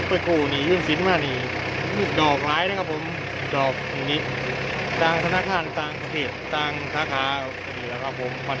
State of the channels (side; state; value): both; identical; correlation 1.00